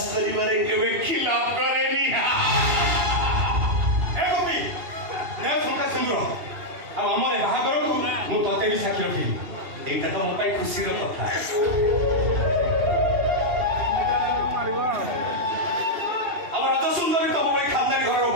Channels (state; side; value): late; left; 2.8 ms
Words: କରିବାରେ କେବେ ଖିଲାପ କରେନି ଏ ଗୋପୀ ନେ ଶଙ୍ଖା ସିନ୍ଦୁର ଆଉ ଆମର ବାହାଘରକୁ ମୁଁ ତତେ ବି ସାକ୍ଷୀ ରଖିବି ଏଇଟା ତ ମୋ ପାଇଁ ଖୁସିର କଥା ଆମ ରଜ ସୁନ୍ଦରୀ ତମ ଭଳି ଖାନଦାନୀ ଘରର